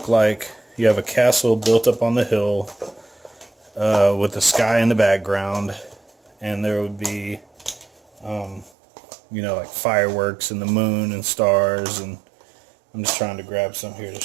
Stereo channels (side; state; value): left; drops out; at 8.7 s